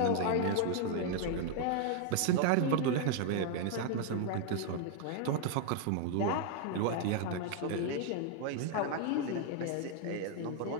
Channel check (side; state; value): both; different; correlation 0.00